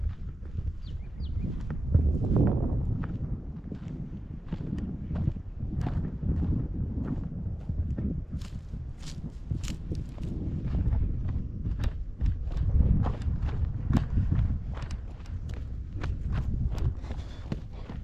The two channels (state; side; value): normal; both; correlation 0.96